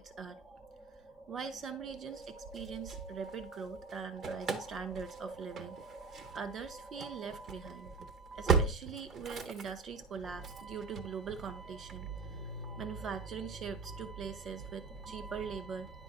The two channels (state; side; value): quieter; left; 4.8 dB